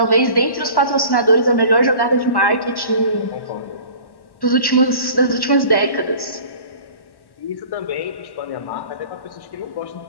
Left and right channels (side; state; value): right; late; 1.1 ms